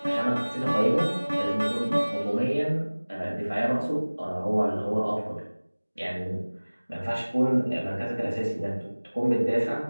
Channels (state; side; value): inverted; both; correlation -1.00